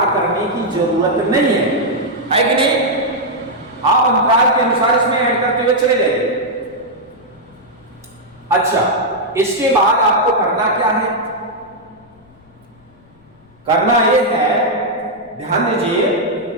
करने की जरूरत नहीं है कि नहीं? आप अंतराल के अनुसार इसमें ऐड करते हुए चले जाइए। अच्छा, इसके बाद आपको करना क्या है? करना यह है, ध्यान दीजिए,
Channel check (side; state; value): left; noise; rumble, 29 dB below the sound